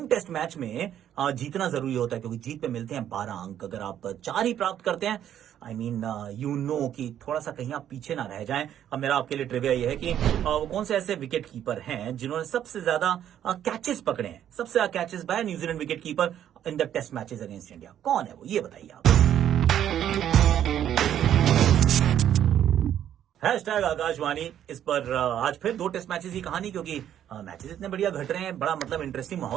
टेस्ट मैच में जीतना जरूरी होता है, क्योंकि जीत पे मिलते हैं 12 अंक। अगर आप 4 ही प्राप्त करते हैं, आई मीन यू नो कि थोड़ा सा कहीं आप पीछे ना रह जाएं। अब मेरा आपके लिए ट्रिविया ये है कि वो कौन से ऐसे विकेट कीपर हैं जिन्होंने सबसे ज्यादा कैचेस पकड़े हैं, सबसे ज्यादा catches by New Zealand wicket keeper in the test matches against India? कौन है वो, ये बताइए आप। हैशटैग आकाशवाणी इस पर आज फिर 2 टेस्ट मैचेस की कहानी, क्योंकि मैचेस इतने बढ़िया घट रहे हैं, बड़ा मतलब इंटरेस्टिंग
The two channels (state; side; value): quieter; left; 10.5 dB